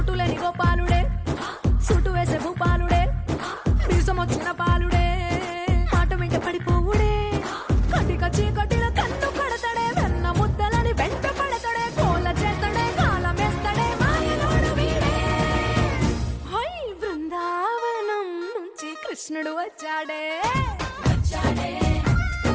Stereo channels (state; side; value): identical; both; correlation 1.00